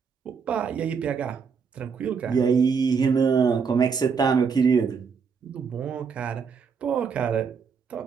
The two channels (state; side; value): quieter; left; 5.9 dB